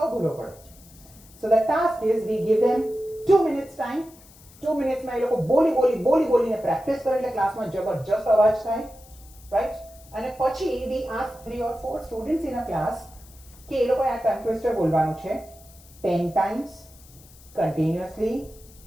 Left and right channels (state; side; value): noise; left; hiss, 24 dB below the sound